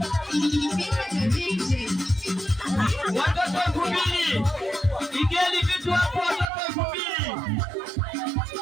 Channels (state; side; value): drops out; left; at 6.5 s